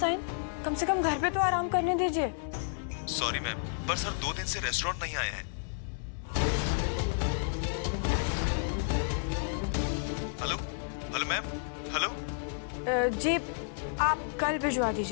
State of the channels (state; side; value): silent; right; 57 dB below the other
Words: कम से कम घर पे तो आराम करने दीजिए। सॉरी मैम, पर सर 2 दिन से रेस्टोरेंट नहीं आए हैं। Hello hello ma'am, hello. जी आप कल भिजवा